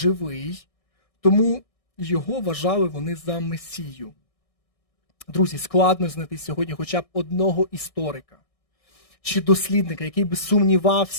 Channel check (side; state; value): right; late; 1.6 ms